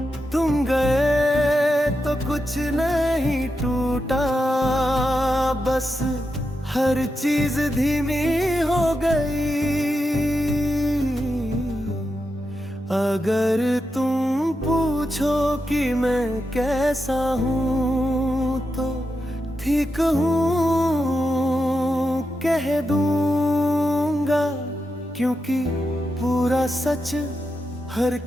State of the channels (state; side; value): normal; both; correlation 0.87